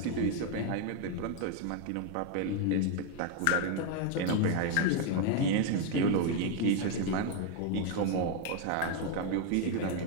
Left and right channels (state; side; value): different; both; correlation 0.01